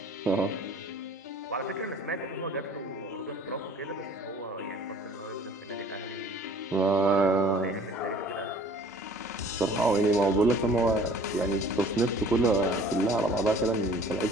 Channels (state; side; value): normal; both; correlation 0.51